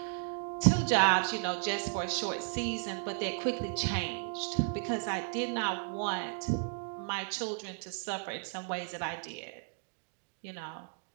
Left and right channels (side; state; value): left; silent; 55 dB below the other